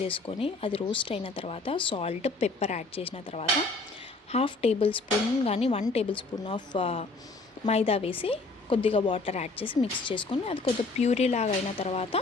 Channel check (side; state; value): right; quieter; 3.5 dB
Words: చేసుకొని అది రోస్ట్ అయిన తర్వాత సాల్ట్, పెప్పర్ యాడ్ చేసిన తర్వాత 1/2 tablespoon కానీ 1 tablespoon ఆఫ్ మైదా వేసి కొద్దిగా వాటర్ యాడ్ చేసి మిక్స్ చేసుకొని అది కొద్దిగా ప్యూరీ లాగా అయిన తర్వాత